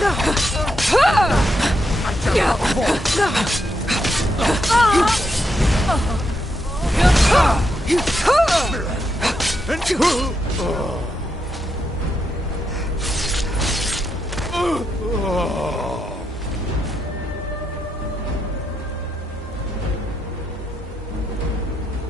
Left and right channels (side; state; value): both; normal; correlation 0.81